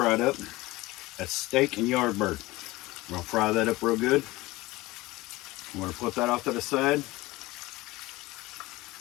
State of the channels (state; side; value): quieter; right; 20.0 dB